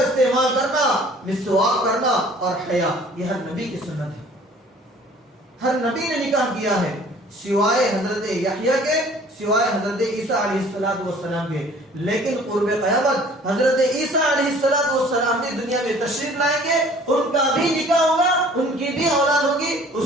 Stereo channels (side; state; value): both; normal; correlation 0.52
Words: کرنا, مسواک کرنا اور حیا, یہ ہر نبی کی سنت ہے. ہر نبی نے نکاح کیا ہے سوائے حضرت یحییٰ کے, سوائے حضرت عیسیٰ علیہ السلام کے. لیکن قرب قیامت حضرت عیسیٰ علیہ السلام بھی دنیا میں تشریف لائیں گے, ان کا بھی نکاح ہوگا, ان کی بھی اولاد ہوگی,